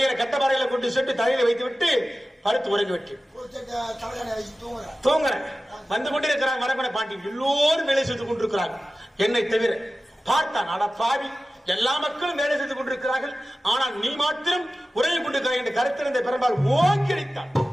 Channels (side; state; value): both; normal; correlation 0.95